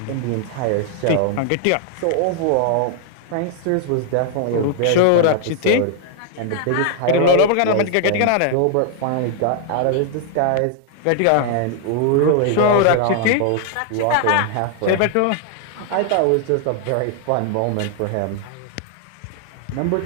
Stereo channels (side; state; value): both; different; correlation 0.00